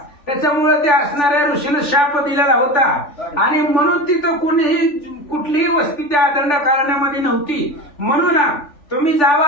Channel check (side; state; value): right; late; 3.4 ms